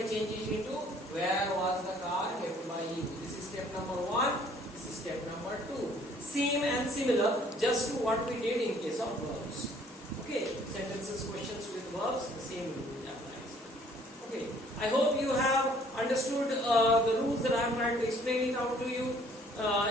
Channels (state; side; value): normal; both; correlation 0.59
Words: change it into where was the car kept by you. This is step number 1. This is step number 2. Same and similar just to what we did in case of verbs. Okay, sentences, questions with verbs, the same rule applies. Okay, I hope you have understood the rules that I am trying to explain it out to you